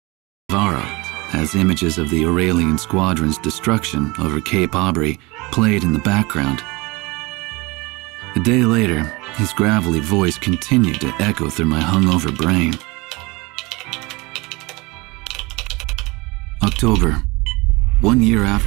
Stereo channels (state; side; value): quieter; left; 24.6 dB